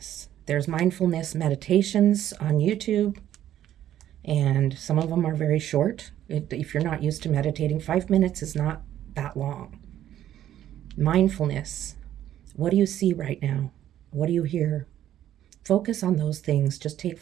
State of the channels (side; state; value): left; quieter; 11.7 dB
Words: There's mindfulness meditations on YouTube, and some of them are very short. If you're not used to meditating, 5 minutes is not that long. Mindfulness. What do you see right now? What do you hear? Focus on those things. Just take